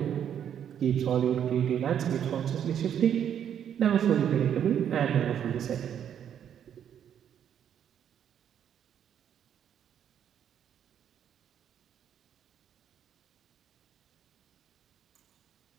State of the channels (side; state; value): left; quieter; 9.2 dB